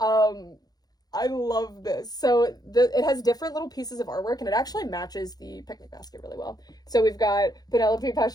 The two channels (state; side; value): late; right; 0.19 ms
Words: I love this. So it has different little pieces of artwork, and it actually matches the picnic basket really well. So we've got Penelope,